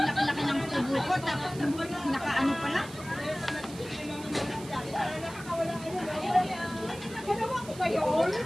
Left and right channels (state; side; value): noise; right; hiss, 16 dB below the sound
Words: laki-laki ng tubo ko, tapos nakaano pala. Ginawa ko ba yun?